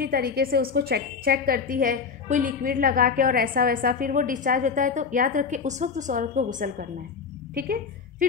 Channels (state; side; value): quieter; right; 5.7 dB